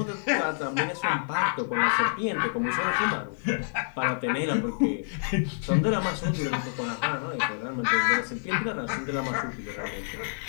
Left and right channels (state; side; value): silent; right; 60 dB below the other